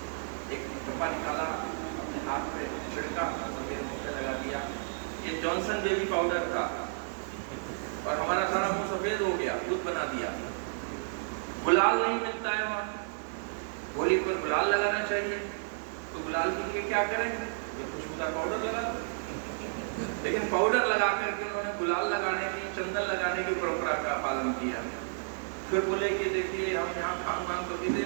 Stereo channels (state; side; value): silent; left; digital silence